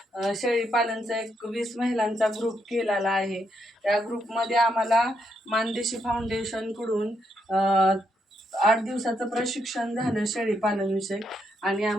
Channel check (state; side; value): normal; both; correlation 0.78